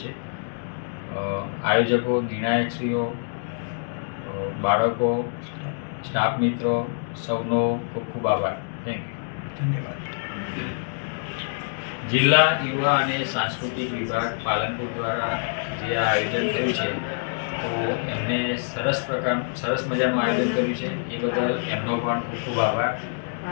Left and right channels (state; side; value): silent; right; digital silence